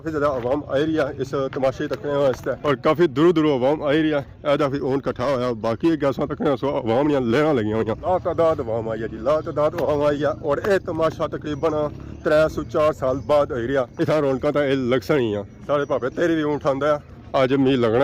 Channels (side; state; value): both; identical; correlation 1.00